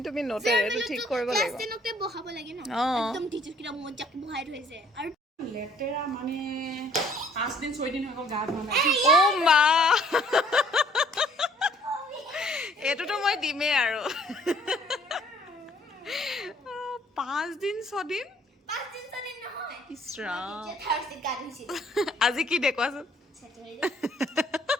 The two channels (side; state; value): both; normal; correlation 0.60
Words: তুমি নোটেড এইটো ঠিক কৰিব ক্লাছ লাগিব 10 তে বহাব লাগে না অ'। একদম টিচাৰ্ছকেইটা মজাকে বহাই থৈছে আৰু লেতেৰা মানে 5 দিন 6 দিন হৈ গ'ল গা ধোৱা নাই অ' মা এইটোতো মই দিমেই আৰু 5 দিন 6 দিন 5 দিন চলে নহয় ইছ ৰাম যে থাৰ্সডে গা ধুইছে আজি কি দে কোৱাচোন স্যাটাৰডে